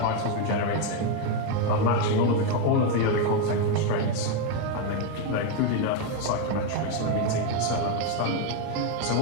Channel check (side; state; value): both; different; correlation 0.02